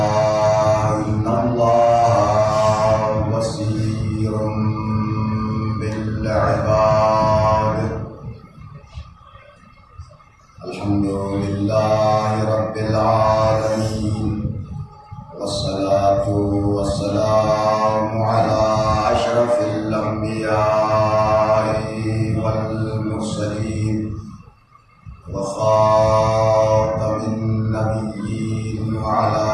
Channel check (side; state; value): both; identical; correlation 1.00